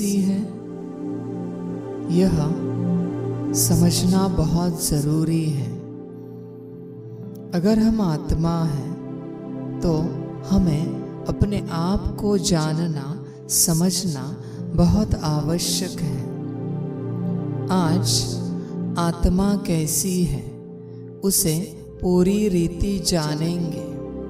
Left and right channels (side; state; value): both; identical; correlation 1.00